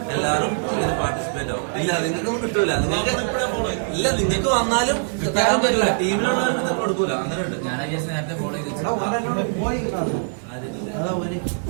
എല്ലാവരും ഇതിന് പാർട്ടിസിപ്പേറ്റ് ആവും. ഇല്ല നിങ്ങൾക്കൊന്നും കിട്ടൂല. നിങ്ങൾക്ക് ഇല്ല നിങ്ങൾക്ക് വന്നാലും തരാൻ പറ്റില്ല. ടീമിലുള്ളവർക്ക് നിങ്ങൾക്ക് കൊടുക്കൂല. അങ്ങനെ ഉണ്ട്. ഞാൻ നേരത്തെ ഫോളോ ചെയ്ത്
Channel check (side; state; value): left; silent; digital silence